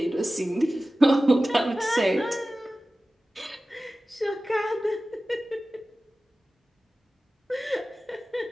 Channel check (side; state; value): both; normal; correlation 0.96